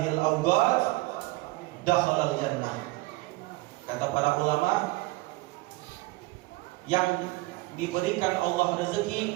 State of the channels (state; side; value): quieter; left; 21.4 dB